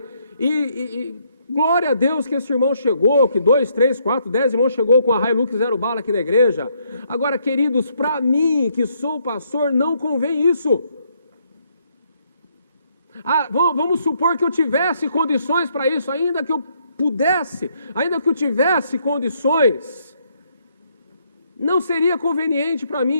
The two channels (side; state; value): both; inverted; correlation -0.72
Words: glória a Deus que esse irmão chegou, que 2, 3, 4, 10 irmãos chegou com a Hilux 0 bala aqui na igreja. Agora, queridos, para mim, que sou pastor, não convém isso. Vamos supor que eu tivesse condições para isso, ainda que eu pudesse, ainda que eu tivesse condições, não seria conveniente para mim